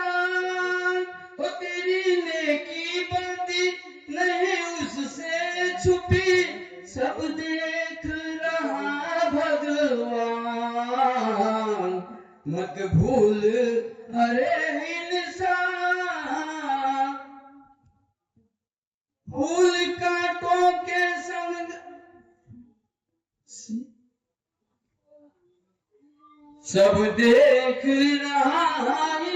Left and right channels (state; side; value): identical; both; correlation 1.00